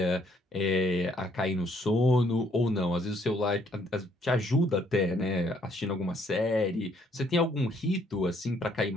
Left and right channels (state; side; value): normal; both; correlation 0.67